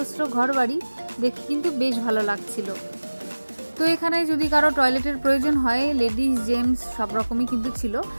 ঘরবাড়ি দেখে কিন্তু বেশ ভালো লাগছিল। তো এখানে যদি কারো টয়লেটের প্রয়োজন হয়, লেডিস জেন্টস সব রকমই কিন্তু ছিল।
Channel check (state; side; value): inverted; both; correlation -1.00